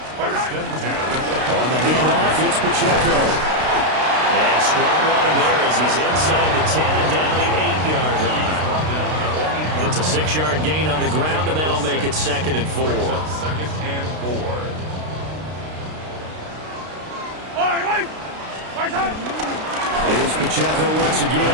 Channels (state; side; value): late; left; 32 ms